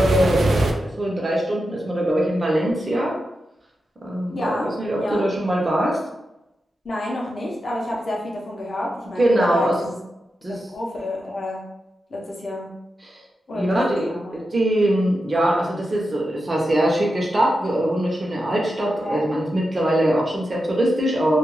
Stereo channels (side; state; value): both; normal; correlation 0.89